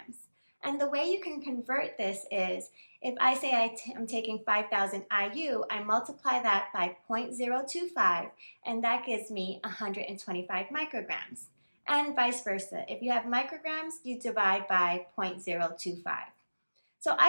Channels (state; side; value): inverted; both; correlation -1.00